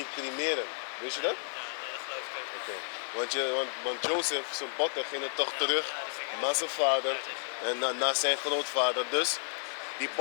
cremeren. Wist je dat? Oké. Want Jozef, zijn botten, gingen toch terug naar zijn vader en naar zijn grootvader. Dus die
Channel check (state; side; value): silent; right; 56 dB below the other